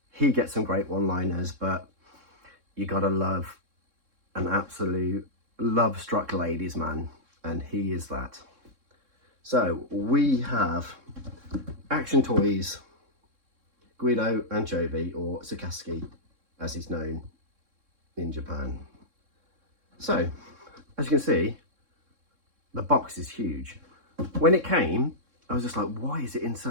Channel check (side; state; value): left; late; 3.7 ms